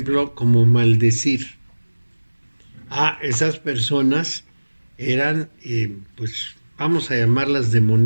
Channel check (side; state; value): both; inverted; correlation -1.00